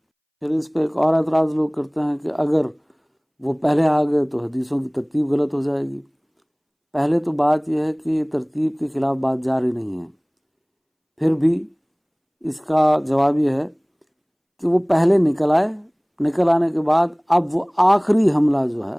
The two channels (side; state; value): both; identical; correlation 1.00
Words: پھر اس پہ ایک اور اعتراض لوگ کرتے ہیں کہ اگر وہ پہلے آ گئے تو حدیثوں کی ترتیب غلط ہو جائے گی۔ پہلے تو بات یہ ہے کہ یہ ترتیب کے خلاف بات جاری نہیں ہے، پھر بھی اس کا جواب یہ ہے کہ وہ پہلے نکل آئے، نکل آنے کے بعد اب وہ آخری حملہ جو ہے